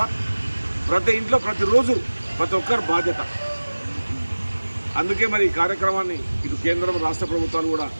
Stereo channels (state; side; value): inverted; both; correlation -1.00